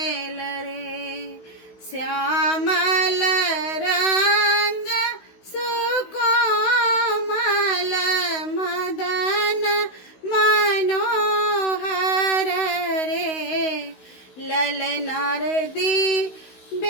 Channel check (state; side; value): late; right; 16 ms